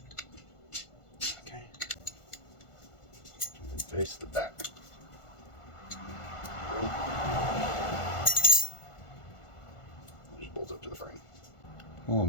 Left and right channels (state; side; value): late; right; 1.5 ms